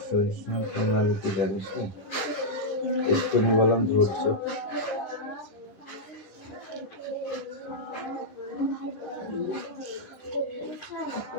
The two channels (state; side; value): late; right; 10 ms